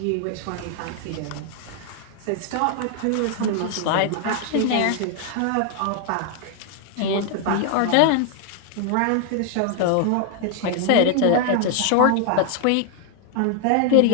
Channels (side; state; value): both; different; correlation 0.00